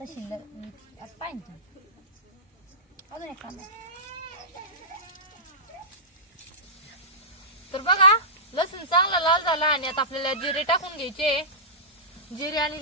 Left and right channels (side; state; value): both; normal; correlation -0.17